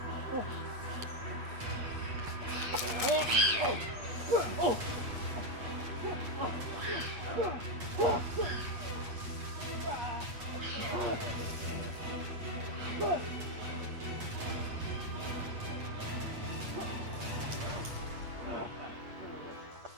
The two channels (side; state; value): left; late; 8.5 ms